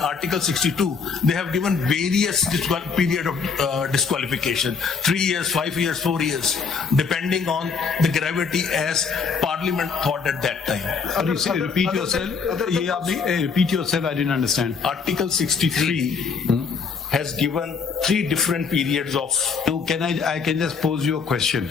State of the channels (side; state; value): right; quieter; 5.4 dB